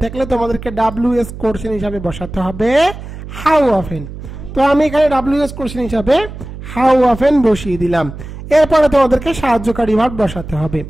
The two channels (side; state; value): right; noise; hum, 12 dB below the sound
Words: থাকলে তোমাদেরকে ডাব্লিউএস কোশ্চেন হিসাবে বসাতে হবে হাউ অফেন। তো আমি এখানে ডাব্লিউএস কোশ্চেন হিসাবে হাউ অফেন বসিয়ে দিলাম। এরপরে তোমাদেরকে সাহায্যকারী ভার্ব বসাতে হবে।